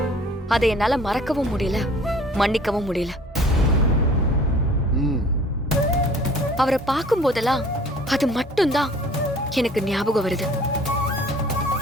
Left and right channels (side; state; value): both; normal; correlation 0.51